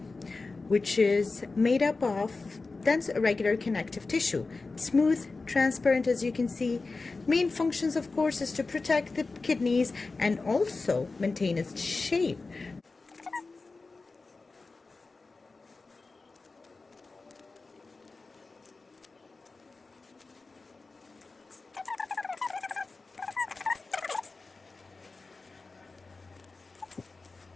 which is made up of dense irregular connective tissue. Smooth, transparent, as you can see. Main functions, of course, is to protect the kidneys and also maintain its shape.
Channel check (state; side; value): quieter; right; 3.8 dB